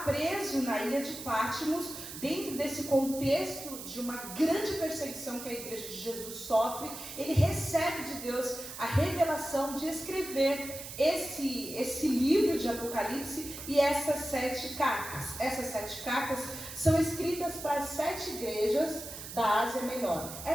preso na ilha de Patmos, dentro desse contexto de uma grande perseguição que a igreja de Jesus sofre, ele recebe de Deus a revelação de escrever esse livro de Apocalipse e essas 7 cartas. Essas 7 cartas são escritas para as 7 igrejas da Ásia Menor.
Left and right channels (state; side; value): noise; right; hiss, 10 dB below the sound